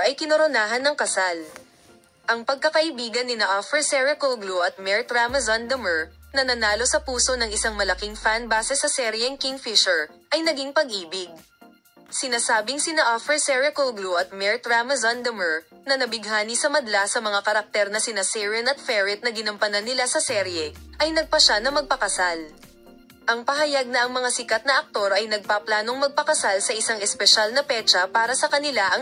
ay kinoronahan ng kasal. Ang pagkakaibigan ni Afra Sericoglu at Mart Ramazan Damer, na nanalo sa puso ng isang malaking fan base sa seryeng Kingfisher, ay naging pag-ibig. Sinasabing sina Afra Sericoglu at Mart Ramazan Damer, na nabighani sa madla sa mga karakter na sina Siren at Ferit na ginampanan nila sa serye, ay nagpasya na magpakasal. Ang pahayag na ang mga sikat na aktor ay nagpaplanong magpakasal sa isang espesyal na petsa para sa kanila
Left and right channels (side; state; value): both; identical; correlation 1.00